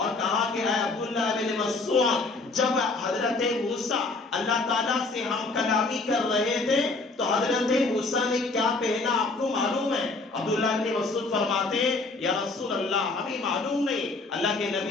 کہا کہ اے عبداللہ ابن مسعود، جب حضرت موسیٰ اللہ تعالیٰ سے ہم کلامی کر رہے تھے تو حضرت موسیٰ نے کیا پہنا آپ کو معلوم ہے؟ عبداللہ ابن مسعود فرماتے ہیں یا رسول اللہ ہمیں معلوم نہیں. اللہ کے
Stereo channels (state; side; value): quieter; right; 3.5 dB